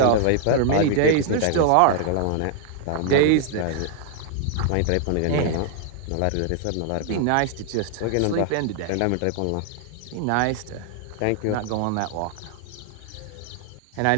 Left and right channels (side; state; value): both; different; correlation 0.00